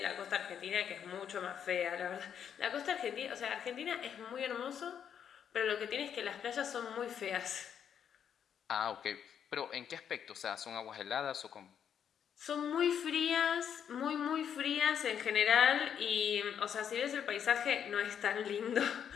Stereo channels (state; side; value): quieter; right; 8.5 dB